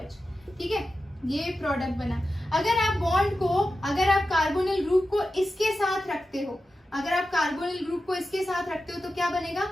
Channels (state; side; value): normal; both; correlation 0.92